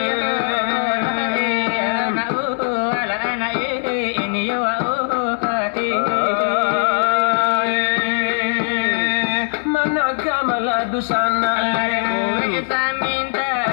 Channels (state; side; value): silent; right; 66 dB below the other